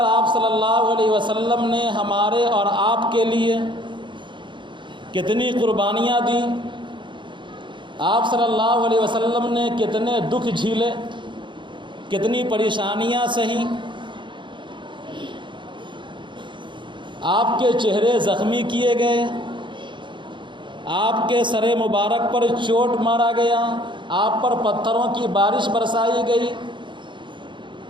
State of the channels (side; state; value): left; late; 0.23 ms